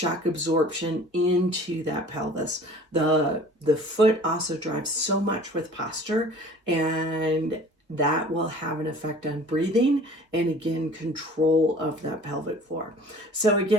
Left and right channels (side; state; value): both; normal; correlation 0.47